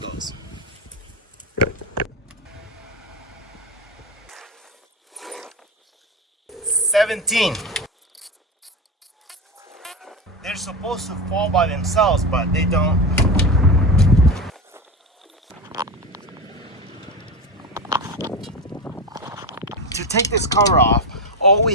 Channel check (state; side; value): normal; both; correlation 0.20